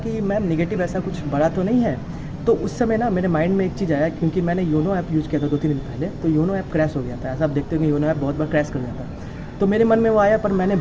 मैम निगेटिव ऐसा कुछ बड़ा तो नहीं है। तो उस समय ना मेरे माइंड में एक चीज़ आया, क्योंकि मैंने योनो ऐप यूज़ किया था 2-3 दिन पहले, तो योनो ऐप क्रैश हो गया था। ऐसा आप देखते हो कि योनो ऐप बहुत बार क्रैश कर जाता है। तो मेरे मन में वो आया, पर मैंने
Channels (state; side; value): identical; both; correlation 1.00